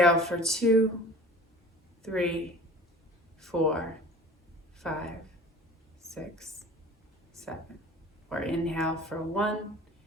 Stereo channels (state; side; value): normal; both; correlation 0.42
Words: for 2, 3, 4, 5, 6, 7. Or inhale for 1,